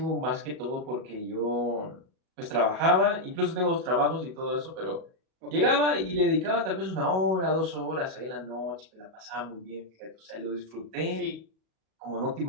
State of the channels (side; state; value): left; late; 37 ms